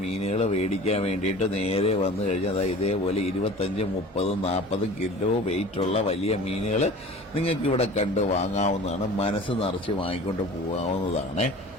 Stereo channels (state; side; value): normal; both; correlation 0.42